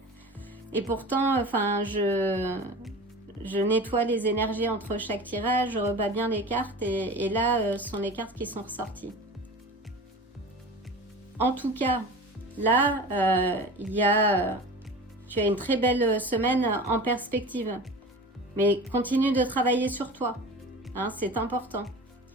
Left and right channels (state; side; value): normal; both; correlation 0.35